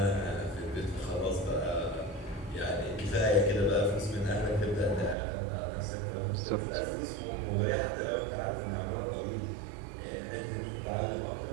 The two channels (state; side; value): drops out; left; at 5.2 s